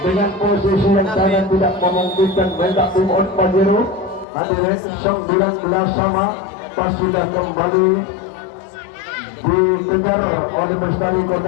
posisi yang sangat tidak memungkinkan mendak tim on Pajero hadirin 19 sama pas sudah kembali dikejar oleh Bestari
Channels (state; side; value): drops out; right; at 4.2 s